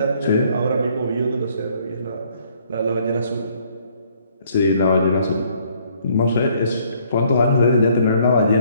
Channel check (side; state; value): both; inverted; correlation -0.64